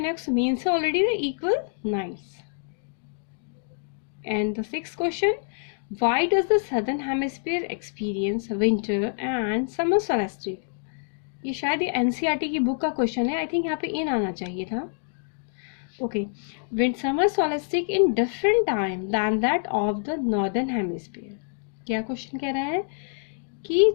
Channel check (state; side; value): silent; right; digital silence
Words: means already the equal nights. And the sixth question, why does the southern hemisphere experience winter and summer solstice? ये शायद ये एनसीईआरटी की बुक का क्वेश्चन है, आई थिंक यहाँ पे इन आना चाहिए था। Okay, wind summer solstice in different time than that of the northern hemisphere. क्या क्वेश्चन कह रहा है कि